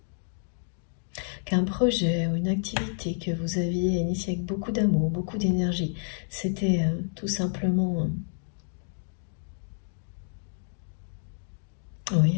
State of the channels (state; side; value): silent; right; digital silence